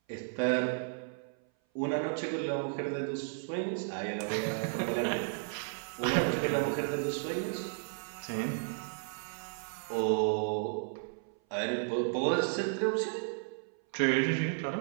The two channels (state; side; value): silent; left; 55 dB below the other